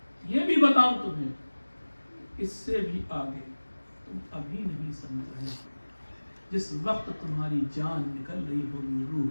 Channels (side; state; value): both; inverted; correlation -1.00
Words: یہ بھی بتاؤں تمہیں، اس سے بھی آگے تم ابھی نہیں سمجھ رہے، جس وقت تمہاری جان نکل رہی ہوگی، روح